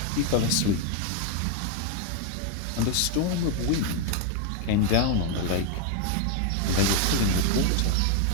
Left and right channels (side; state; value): both; different; correlation 0.01